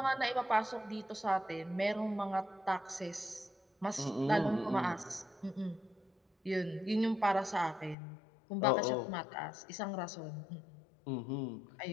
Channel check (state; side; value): drops out; right; at 8.0 s